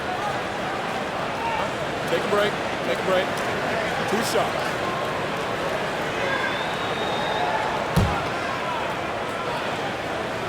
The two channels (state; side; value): identical; both; correlation 1.00